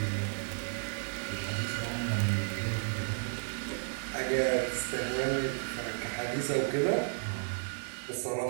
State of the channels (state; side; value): silent; left; digital silence